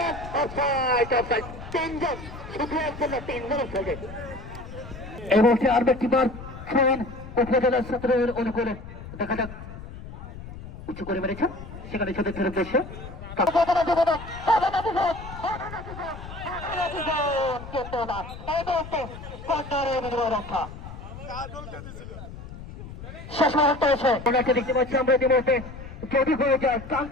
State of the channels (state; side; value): noise; left; rumble, 13 dB below the sound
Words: Offside, offside. তিনজন, শুধু একজন না, তিনজনের সঙ্গে। এই মুহূর্তে আর একটি বার ফোন উপজেলা ছাত্রের অনুকূলে। দেখা যাক, উঁচু করে মেরেছেন, সেখানে ছোটের উদ্দেশ্যে রক্ষা শেষ মুহূর্তে এসে ওনাকে দেখতে পাচ্ছি আমরা ইতিমধ্যে। যদি হয়ে যায়